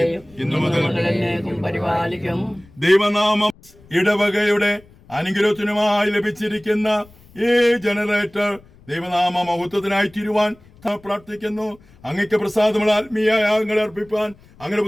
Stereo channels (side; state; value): left; noise; rumble, 26 dB below the sound